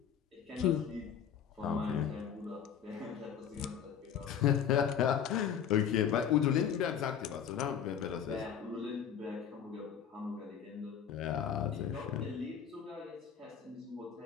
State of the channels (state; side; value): quieter; right; 8.4 dB